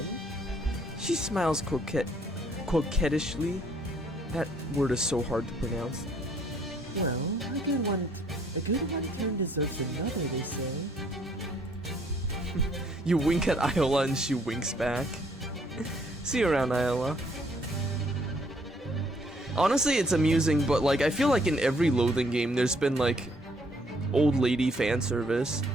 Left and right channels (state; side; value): normal; both; correlation 0.65